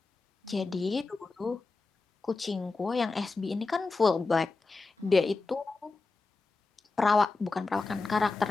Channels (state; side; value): quieter; right; 3.7 dB